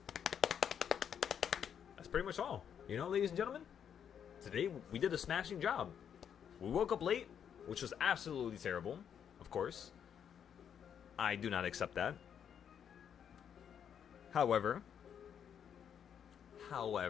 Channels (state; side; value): quieter; right; 8.3 dB